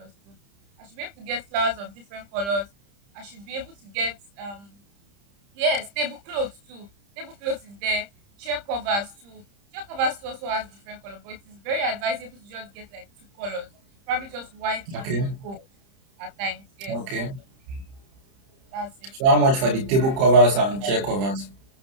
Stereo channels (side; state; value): left; late; 30 ms